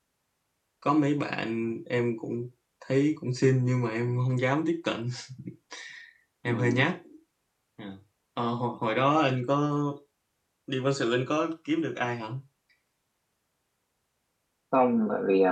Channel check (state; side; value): identical; both; correlation 1.00